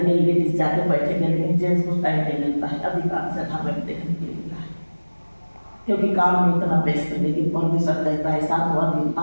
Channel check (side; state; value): both; inverted; correlation -1.00